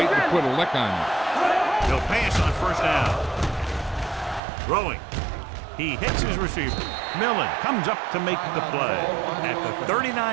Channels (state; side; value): drops out; left; at 4.4 s